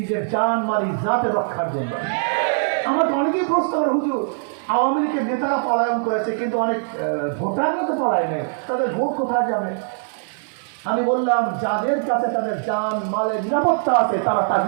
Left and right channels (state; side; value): silent; left; digital silence